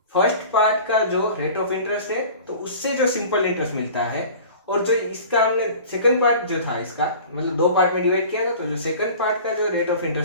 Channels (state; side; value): inverted; both; correlation -0.42